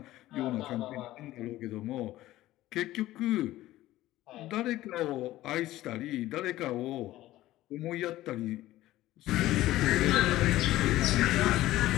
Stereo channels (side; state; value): right; quieter; 15.7 dB